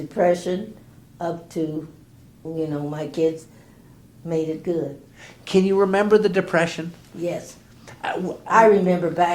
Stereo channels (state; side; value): identical; both; correlation 1.00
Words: up to, my kids made it good. Can you remember the Depression? Yes. I remember